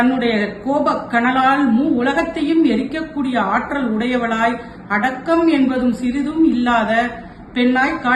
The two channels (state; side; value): identical; both; correlation 1.00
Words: கோப கனலால் உலகத்தையும் எரிக்கக்கூடிய ஆற்றல் உடையவளாய் அடக்கம் என்பதும் சிறிதும் இல்லாத பெண்ணாய்